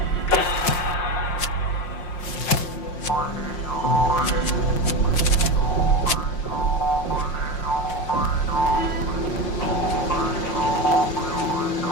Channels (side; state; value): right; late; 5.6 ms